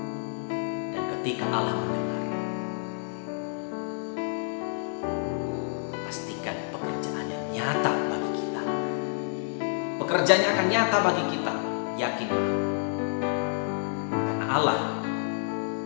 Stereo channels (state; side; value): silent; right; 59 dB below the other